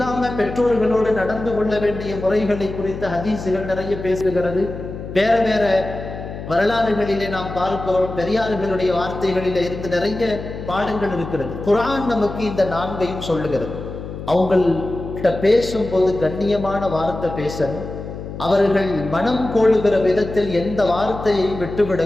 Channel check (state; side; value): noise; left; hum, 10 dB below the sound